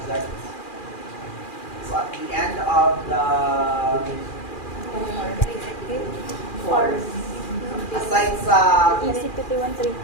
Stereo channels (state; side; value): late; right; 2.4 ms